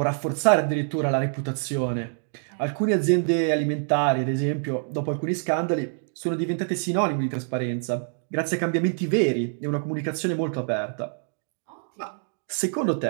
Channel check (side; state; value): left; silent; 61 dB below the other